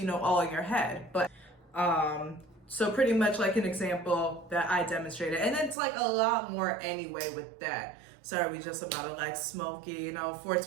know, all in your head. But, so pretty much like an example that I demonstrated. And it's like a lot more anyway with that. Sorry, we just about to like smoky, you know,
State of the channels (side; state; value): left; drops out; at 5.8 s